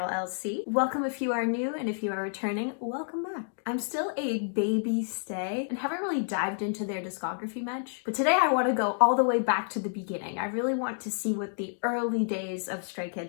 LC. Welcome if you are new, and if you are returning, welcome back. I'm still a baby stay and haven't really dived into their discography much, but today I want to go all the way back to the beginning. I really want to see what the early days of Stray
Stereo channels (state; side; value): silent; right; digital silence